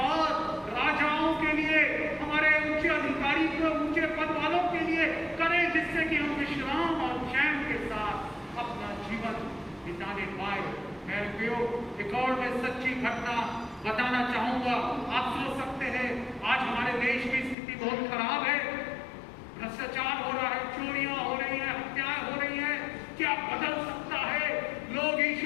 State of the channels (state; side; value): drops out; right; at 17.6 s